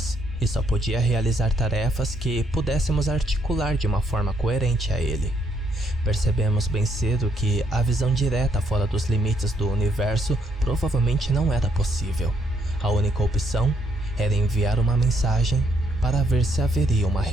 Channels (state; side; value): normal; both; correlation 0.72